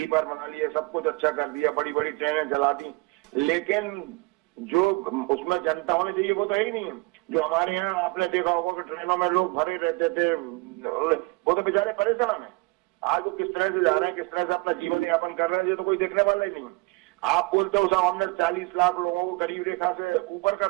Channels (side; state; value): left; quieter; 25.2 dB